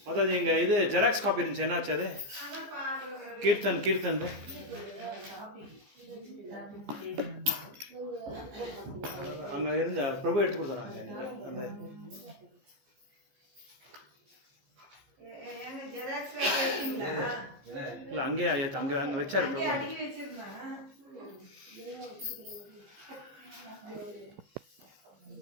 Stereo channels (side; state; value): left; late; 15 ms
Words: ಮಾತಾಜಿ ಹಿಂಗೆ ಇದು ಜೆರಾಕ್ಸ್ ಕಾಪಿ இருந்துச்சு, என்னாச்சு அது? கீர்த்தன் அங்கே இருந்த பிரபு எடுத்து கொடுத்துறாங்க அந்த இல்லை அங்கேயே அங்கே வச்சாரு பிரபு.